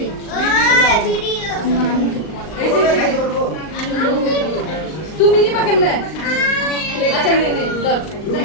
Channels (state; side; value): late; right; 39 ms